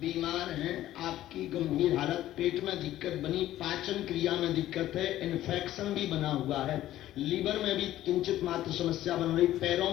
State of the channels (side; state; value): right; quieter; 13.8 dB